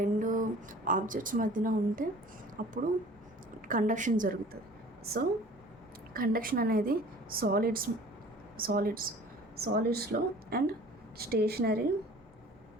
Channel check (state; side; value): normal; both; correlation 0.47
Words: రెండు ఆబ్జెక్ట్స్ మధ్యన ఉంటే అప్పుడు కండక్షన్ జరుగుతుంది. సో కండక్షన్ అనేది సాలిడ్స్లో అండ్ స్టేషనరీ